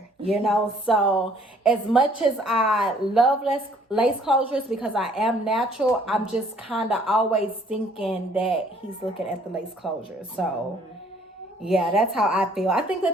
So as much as I love lace closures because I am natural, I'm just kind of always thinking that he's looking at the lace closure. So yeah, that's how I feel. I think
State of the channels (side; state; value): both; normal; correlation 0.60